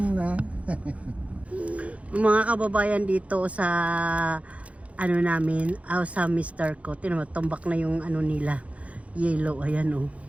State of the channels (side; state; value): left; late; 0.065 ms